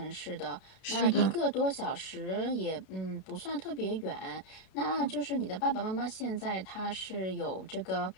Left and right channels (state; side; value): late; right; 32 ms